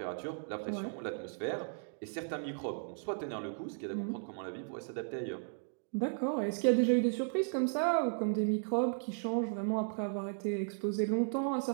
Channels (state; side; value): silent; left; digital silence